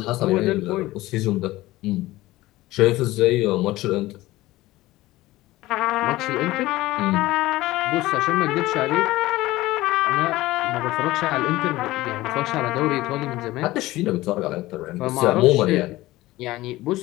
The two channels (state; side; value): quieter; right; 17.8 dB